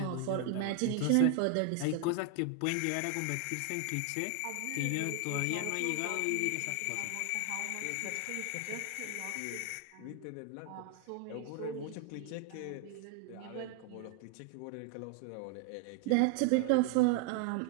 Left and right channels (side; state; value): both; different; correlation 0.00